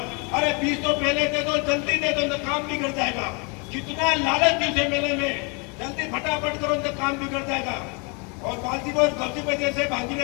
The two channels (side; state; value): right; quieter; 32.8 dB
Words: अरे 20 तो पहले दे दो, जल्दी दे दो, तो काम बिगड़ जाएगा। कितना लालच थी उसे मेले में, जल्दी फटाफट करो तो काम बिगड़ जाएगा। और बाजी बहुत गलती पे जैसे बाजी